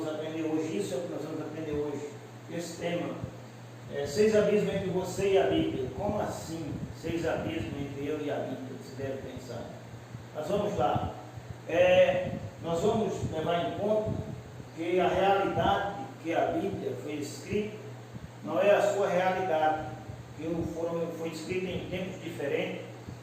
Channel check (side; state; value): both; identical; correlation 1.00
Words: aprender hoje, isso é o que nós vamos aprender hoje, esse tema. 6 abismos entre você e a Bíblia. Como assim 6 abismos entre eu e a Bíblia? Você deve pensar. Mas vamos lá. Nós vamos levar em conta que a realidade que a Bíblia foi escrita não é a sua realidade, que foi escrita em tempos diferentes,